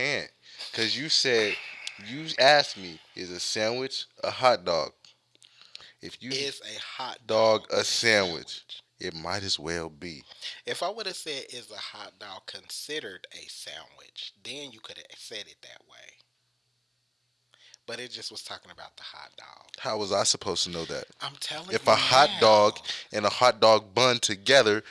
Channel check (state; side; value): identical; both; correlation 1.00